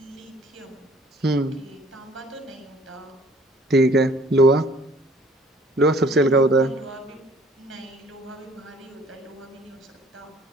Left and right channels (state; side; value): normal; both; correlation 0.56